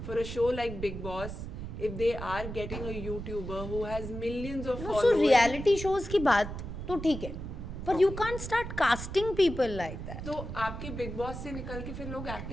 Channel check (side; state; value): right; noise; rumble, 8 dB below the sound